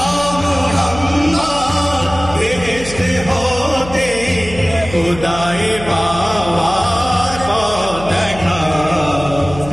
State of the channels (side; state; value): left; noise; hum, 13 dB below the sound